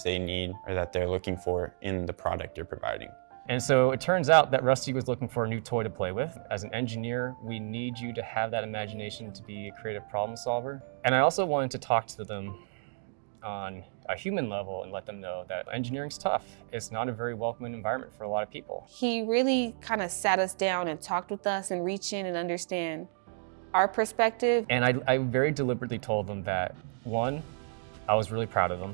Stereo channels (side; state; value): left; silent; digital silence